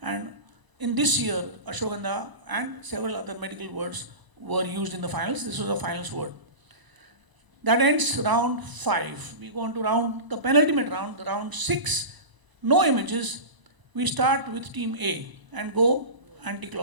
And in this year, Ashwagandha and several other medical words were used in the finals. This was a finals word. That ends round 5. We go on to the penultimate round, the round 6. No images. We start with Team A and go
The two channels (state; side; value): late; left; 1.0 ms